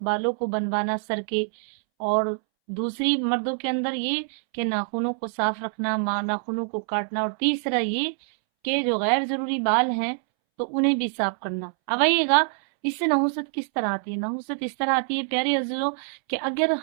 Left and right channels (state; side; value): silent; left; 62 dB below the other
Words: کو بنوانا سر کے، اور دوسری مردوں کے اندر یہ کہ ناخنوں کو صاف رکھنا، ناخنوں کو کاٹنا، اور تیسرا یہ کہ جو غیر ضروری بال ہیں تو انہیں بھی صاف کرنا۔ اب آئیے گا اس سے نحوست کس طرح آتی ہے۔ نحوست اس طرح آتی ہے پیارے عزیزوں کہ اگر